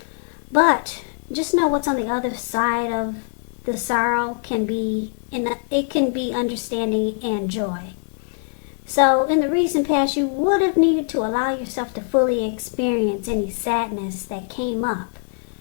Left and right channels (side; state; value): right; silent; 58 dB below the other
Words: But just know what's on the other side of the sorrow can be, it can be understanding and joy. So in the recent past, you would have needed to allow yourself to fully experience any sadness that came up,